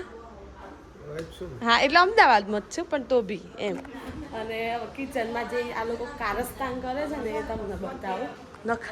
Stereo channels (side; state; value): both; identical; correlation 1.00